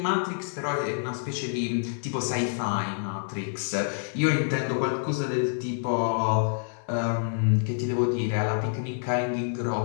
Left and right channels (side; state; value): right; silent; digital silence